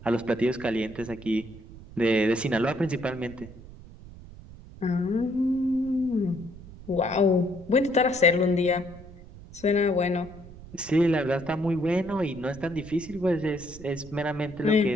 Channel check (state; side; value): noise; right; rumble, 17 dB below the sound